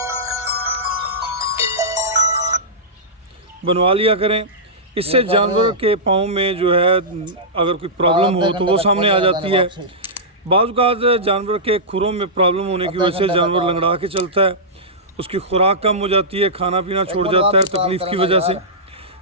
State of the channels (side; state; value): both; normal; correlation -0.15